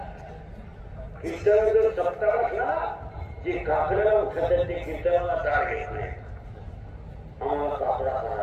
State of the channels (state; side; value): identical; both; correlation 1.00